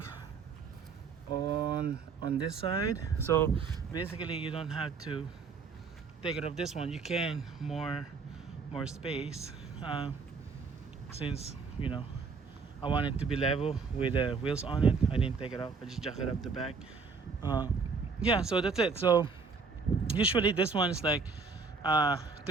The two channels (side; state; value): left; quieter; 4.9 dB